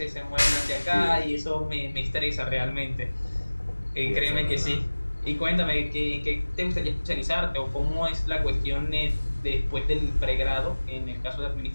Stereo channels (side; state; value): both; inverted; correlation -1.00